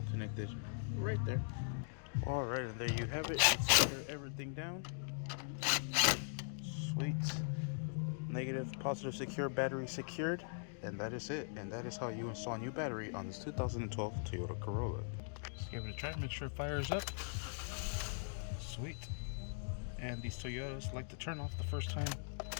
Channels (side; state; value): right; silent; digital silence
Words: connect it right there. Alright, and there you have it. Let's secure everything down. Sweet. Negative, positive secure, battery secured. And that is it. And that is how you install a new battery on this 2012 Toyota Corolla. Let's give it a try. Make sure it fires up. Sweet. And these Toyotas like to turn off the first time,